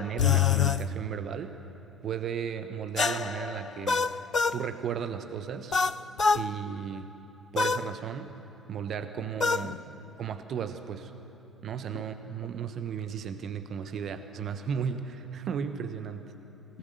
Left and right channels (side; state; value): both; normal; correlation 0.51